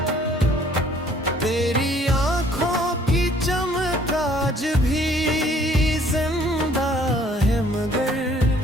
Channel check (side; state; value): both; normal; correlation 0.59